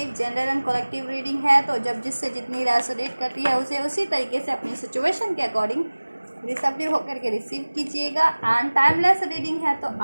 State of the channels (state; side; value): inverted; both; correlation -1.00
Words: जेंडर एंड कलेक्टिव रीडिंग है, तो जब जिससे जितनी रेसोनेट करती है उसे उसी तरीके से अपनी सिचुएशन के अकॉर्डिंग रिसेप्टिव होकर के रिसीव कीजिएगा। एंड टाइमलेस रीडिंग है, तो